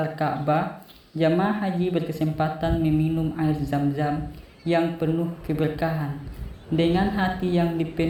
Ka'bah, jamaah haji berkesempatan meminum air Zam-Zam yang penuh keberkahan. Dengan hati yang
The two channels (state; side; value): identical; both; correlation 1.00